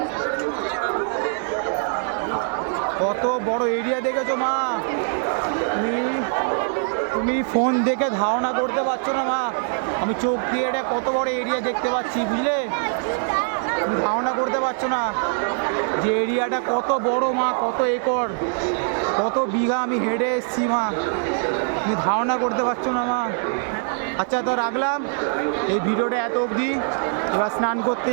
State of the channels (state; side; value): silent; left; 63 dB below the other